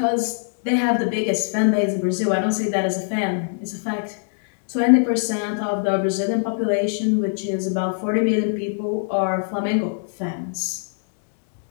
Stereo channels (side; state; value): right; silent; digital silence